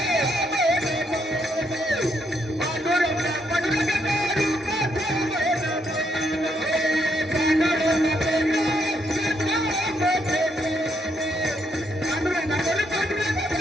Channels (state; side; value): normal; both; correlation 0.75